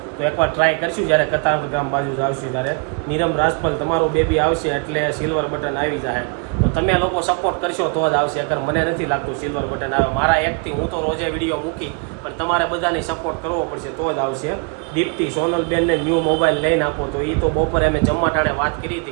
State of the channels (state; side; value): quieter; left; 35.0 dB